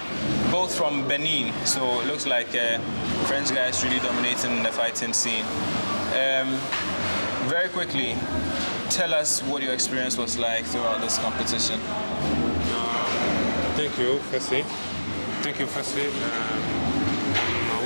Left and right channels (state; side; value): inverted; both; correlation -1.00